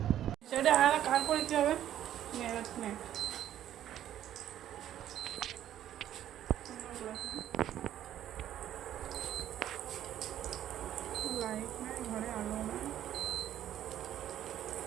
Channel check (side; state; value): left; quieter; 11.5 dB